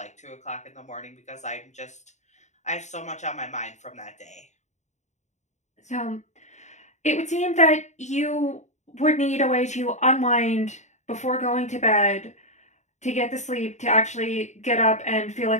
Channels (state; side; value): late; right; 0.34 ms